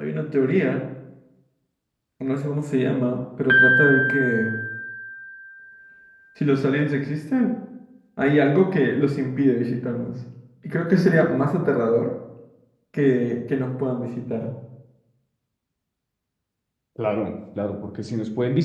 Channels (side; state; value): both; identical; correlation 1.00